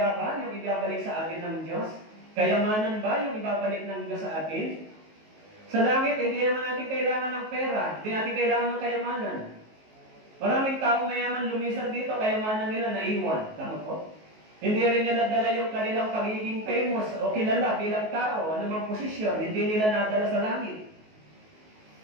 ba yung ibabalik sa atin ng Diyos? Kayamanan ba yung ibabalik ng Diyos sa atin? Sa langit, hindi naman natin kailangan ng pera. Hindi natin kailangan ng kayamanan. Maraming taong mayaman lumisan dito, kayamanan nila naiwan. Tama po? Hindi rin nila dala yung kanilang pagiging famous o kilala bilang tao, anumang posisyon, hindi nila nadala sa langit.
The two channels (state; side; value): late; left; 19 ms